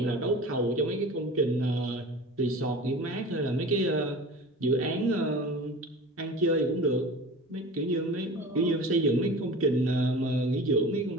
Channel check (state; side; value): normal; both; correlation 0.37